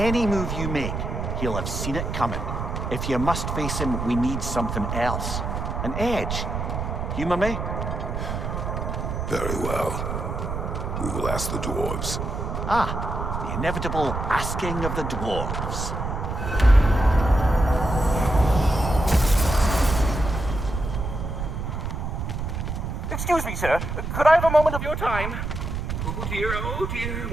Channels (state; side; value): noise; right; rumble, 3 dB below the sound